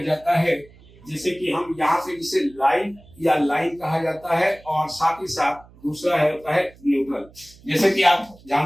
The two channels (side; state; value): right; noise; hum, 25 dB below the sound